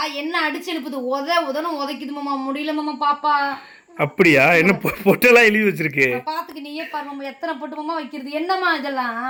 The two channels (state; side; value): identical; both; correlation 1.00